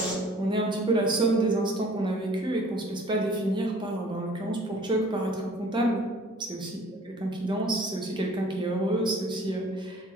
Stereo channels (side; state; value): both; normal; correlation 0.52